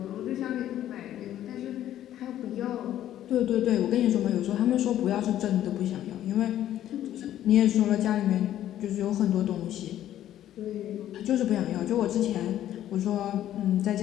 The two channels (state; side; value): quieter; right; 12.0 dB